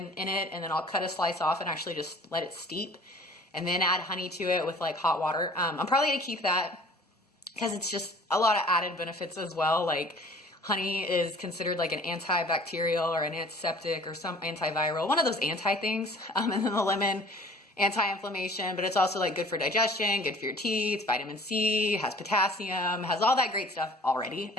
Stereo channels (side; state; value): both; normal; correlation 0.49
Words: in it, and then I'll cut a slice off and actually just let it steep, and then add honey to it with like hot water. I'm probably going to keep that, because it's just a lot of added benefits as well. Like honey is considered like an antibacterial or an antiseptic or some antiviral, one of those anti things. And then the lemon, anti-inflammation, but it's also like good for digestion, good for your teeth, vitamin C, has potassium, has all that great stuff already.